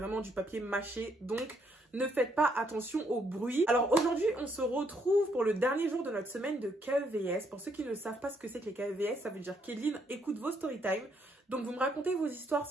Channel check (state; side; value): normal; both; correlation 0.72